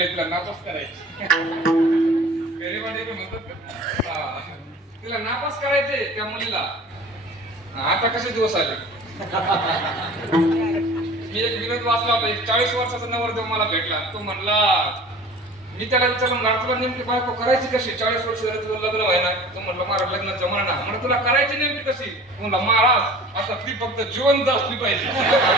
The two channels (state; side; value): normal; both; correlation 0.43